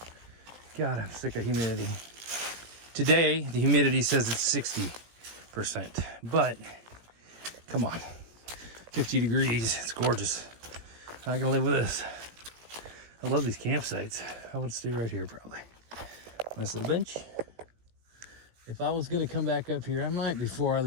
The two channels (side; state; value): left; late; 17 ms